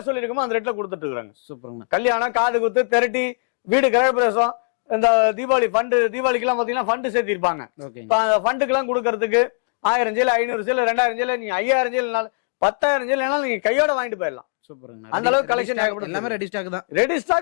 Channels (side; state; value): right; silent; digital silence